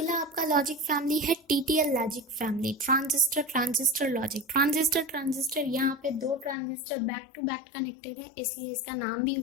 आपका लॉजिक फैमिली है TTL logic family, transistor logic. Transistor यहाँ पे 2 transistor back to back connected है, इसलिए इसका नाम भी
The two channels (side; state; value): right; drops out; at 6.6 s